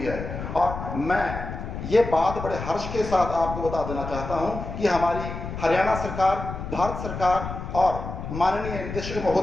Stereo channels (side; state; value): left; noise; rumble, 7 dB below the sound